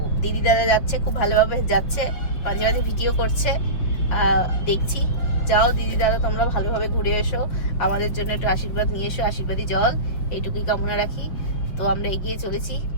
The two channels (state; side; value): late; right; 6.0 ms